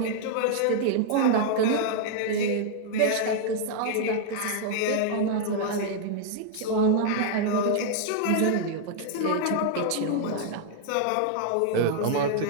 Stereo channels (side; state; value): both; different; correlation 0.00